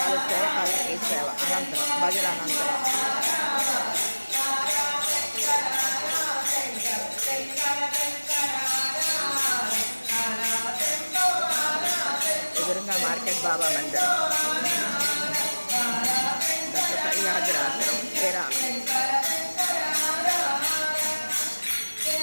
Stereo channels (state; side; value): inverted; both; correlation -1.00